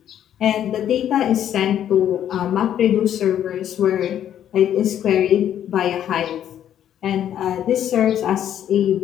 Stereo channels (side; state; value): right; quieter; 10.4 dB